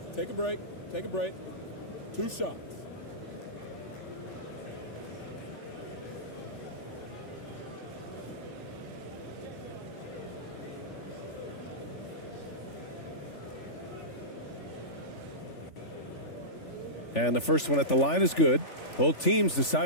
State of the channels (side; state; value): right; late; 3.4 ms